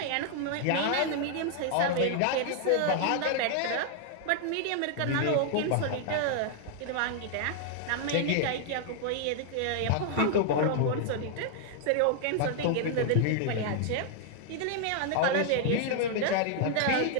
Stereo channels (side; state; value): both; different; correlation 0.00